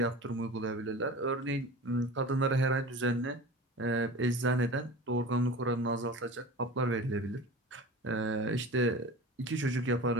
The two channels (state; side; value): normal; both; correlation 0.35